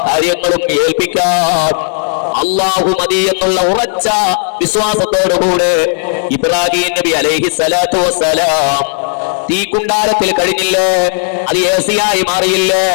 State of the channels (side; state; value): right; silent; digital silence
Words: കാര്യങ്ങളും ഏൽപ്പിക്കാൻ അല്ലാഹു മതി എന്നുള്ള ഉറച്ച വിശ്വാസത്തോടുകൂടെ ഇബ്രാഹീം നബി അലൈഹി സ്വലാത്തു വസ്സലാം തീകുണ്ടാരത്തിൽ കഴിഞ്ഞില്ലേ? അത് ഏസിയായി മാറിയില്ലേ?